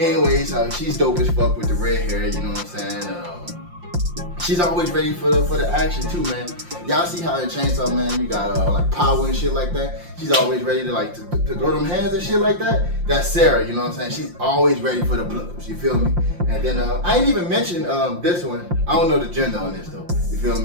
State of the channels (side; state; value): left; late; 5.7 ms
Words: anyways, she's dope as fuck with the red hair, you know what I'm saying? She's always ready for the action too, man. Y'all see how in Chainsaw Man you got like power and shit like that. She's always ready to like to throw them hands and shit like that. That's Sarah, you know what I'm saying? She's always ready for the blows. You feel me? And then I ain't even mentioned this one. I don't know the gender on this though. You feel